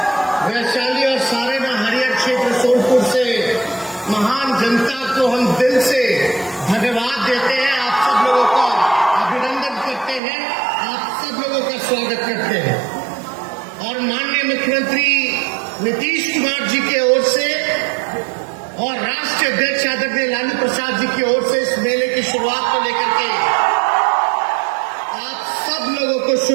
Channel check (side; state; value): left; drops out; at 10.2 s